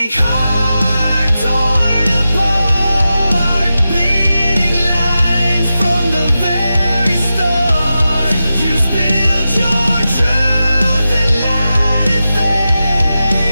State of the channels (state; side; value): inverted; both; correlation -0.91